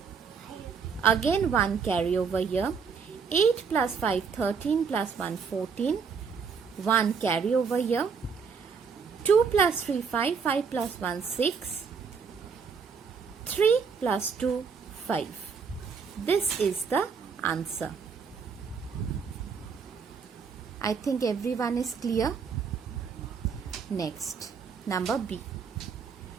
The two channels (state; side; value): quieter; left; 5.9 dB